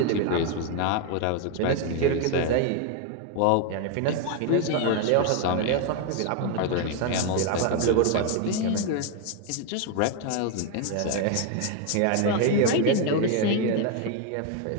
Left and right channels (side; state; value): both; different; correlation 0.01